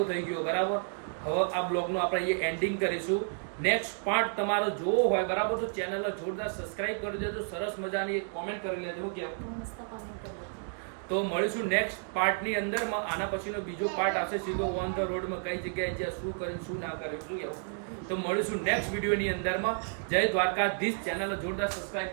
થઈ ગયો બરાબર. હવે આ બ્લોગનું આપણે અહીંયા એન્ડિંગ કરીશું. નેક્સ્ટ પાર્ટ તમારો જોવો હોય બરાબર તો ચેનલને જોરદાર સબસ્ક્રાઇબ કરી દેજો. સરસ મજાની એક કોમેન્ટ કરી લેજો. કેવું તો મળીશું નેક્સ્ટ પાર્ટની અંદરમાં. આના પછીનો બીજો પાર્ટ આવશે સીધો ઓન ધ રોડમાં, કઈ જગ્યાએ જ્યાં શું કર્યું શું ના કર્યું શું એવું. તો મળીશું નેક્સ્ટ વિડીયોની અંદરમાં. જય દ્વારકાધીશ. ચેનલને જોરદાર સબસ્ક્રાઇબ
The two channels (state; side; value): silent; left; 57 dB below the other